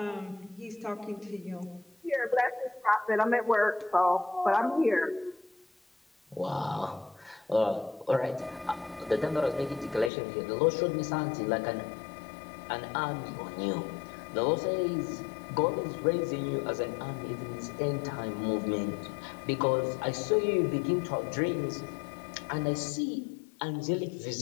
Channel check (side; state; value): right; drops out; at 10.1 s